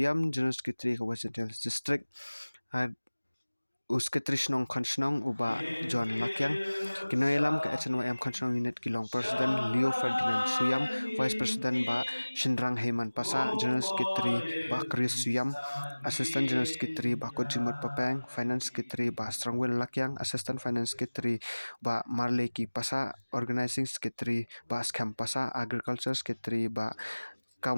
General Secretary Kawasan Hills District Secretary Snong Konsnong uba John Lakyang kinoilam ke HNYM Konsnong Unit Kilong Presiden Leo Ferdinand Suyam Vice President ba Shindrang Heyman Pasa General Secretary ba Chris Suyam Assistant General Secretary ba Kojimut Papang Finance Secretary ba Strongwell Lakyang Assistant Finance Secretary ba Marleki Pasa Organizing Secretary ba Skam Pasa Agriculture Secretary ba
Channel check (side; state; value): both; inverted; correlation -1.00